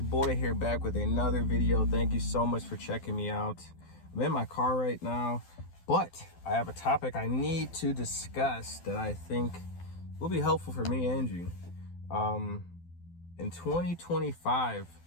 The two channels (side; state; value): right; late; 12 ms